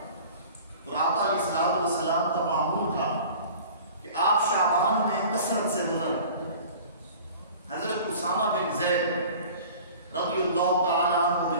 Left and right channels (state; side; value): inverted; both; correlation -0.43